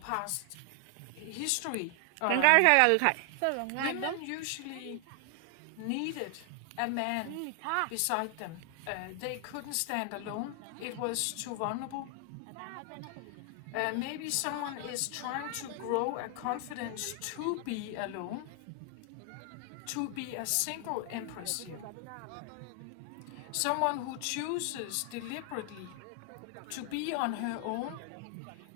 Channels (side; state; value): both; different; correlation 0.00